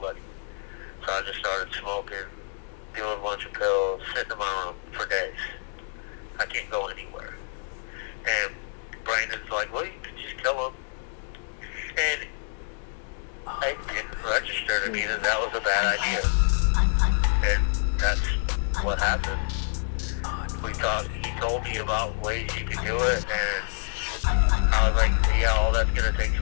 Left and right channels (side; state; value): right; silent; digital silence